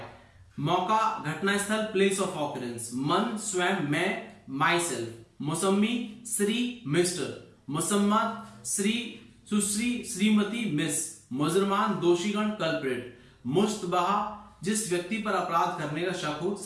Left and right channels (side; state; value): both; identical; correlation 1.00